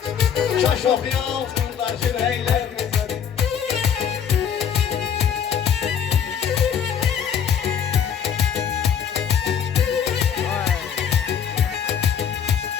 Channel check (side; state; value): right; quieter; 8.1 dB